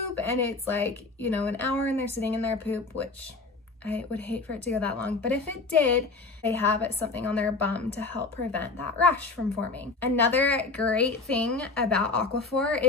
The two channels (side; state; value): right; quieter; 3.7 dB